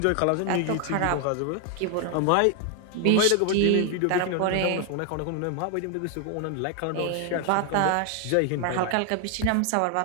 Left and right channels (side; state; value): both; different; correlation 0.00